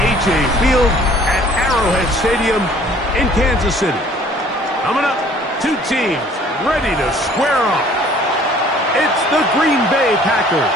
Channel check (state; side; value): normal; both; correlation 0.55